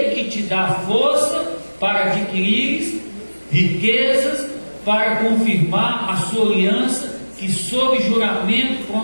que te dá força para adquirires riquezas, para confirmar a sua aliança, que sob juramento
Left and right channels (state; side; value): inverted; both; correlation -1.00